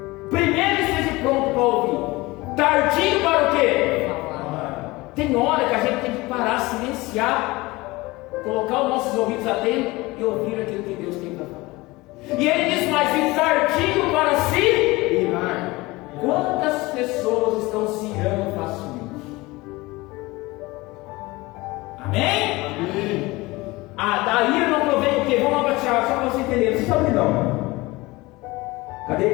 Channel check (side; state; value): right; quieter; 21.5 dB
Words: Primeiro esteja pronto para ouvir. Tardio para o quê? Tem hora que a gente tem que parar, silenciar, colocar os nossos ouvidos atentos e ouvir aquilo que Deus tem para falar. E ele diz mais: e tardio para se irar. Quantas pessoas estão se irando facilmente? Amém? Amém. Da ira não provém o quê? Vamos lá para Tiago, só para você entender. Vocês estão não? Cadê?